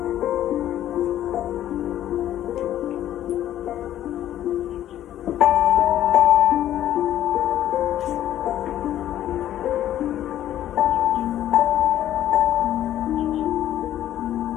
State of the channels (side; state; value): right; quieter; 12.1 dB